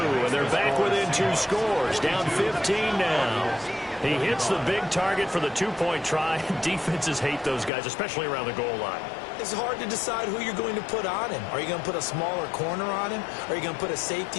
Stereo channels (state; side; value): drops out; right; at 7.7 s